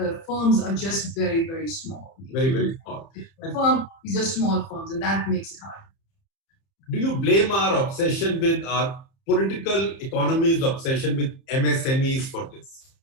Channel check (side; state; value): right; late; 30 ms